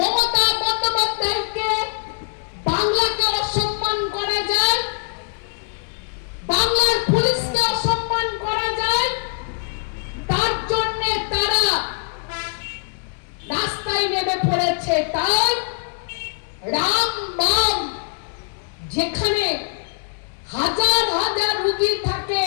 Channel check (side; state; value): right; silent; 64 dB below the other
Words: বন্দ্যোপাধ্যায়কে, বাংলাকে অসম্মান করা যায়, বাংলার পুলিশকে অসম্মান করা যায়, তার জন্য তারা রাস্তায় নেমে পড়েছে। তাই রাম বাম, যেখানে হাজার হাজার রোগী থাকে